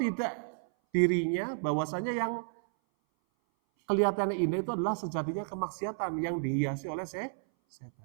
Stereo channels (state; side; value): silent; left; 57 dB below the other